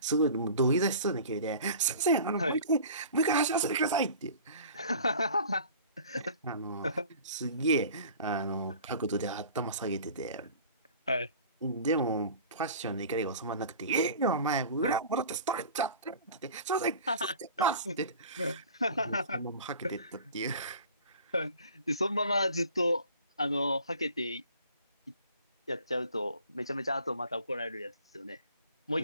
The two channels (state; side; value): inverted; both; correlation -0.44